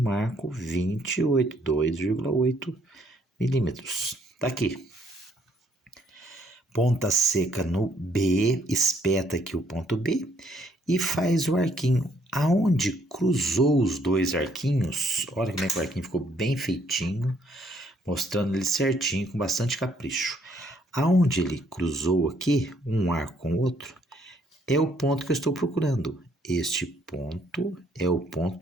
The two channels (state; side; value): normal; both; correlation 0.67